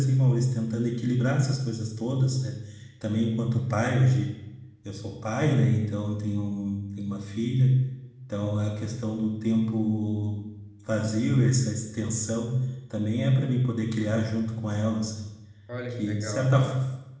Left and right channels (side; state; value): both; identical; correlation 1.00